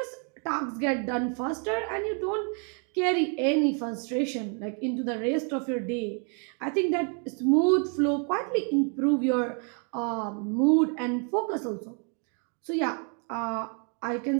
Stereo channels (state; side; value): quieter; left; 39.8 dB